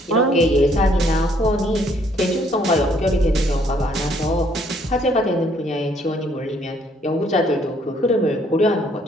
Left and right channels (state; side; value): normal; both; correlation 0.65